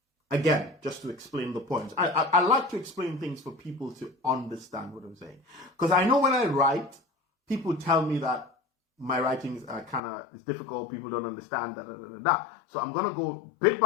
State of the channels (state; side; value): drops out; right; at 10.0 s